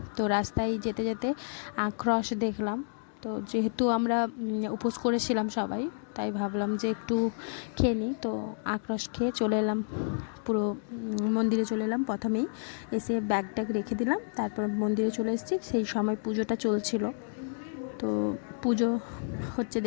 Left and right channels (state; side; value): silent; right; digital silence